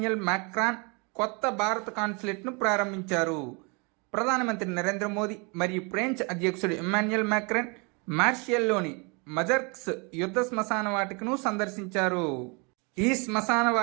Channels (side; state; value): left; quieter; 31.4 dB